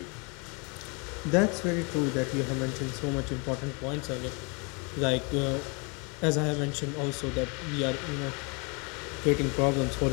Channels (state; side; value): quieter; right; 32.6 dB